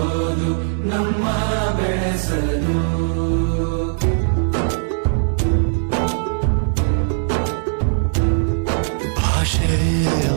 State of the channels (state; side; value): silent; left; digital silence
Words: ನಮ್ಮ ಬೆಳೆಸಲು ಭಾಷೆ